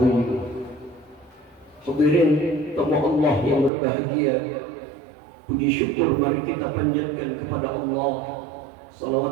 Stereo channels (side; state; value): left; drops out; at 3.7 s